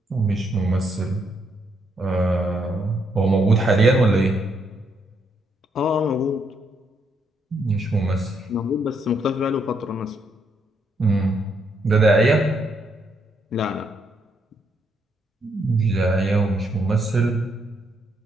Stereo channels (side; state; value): both; normal; correlation 0.75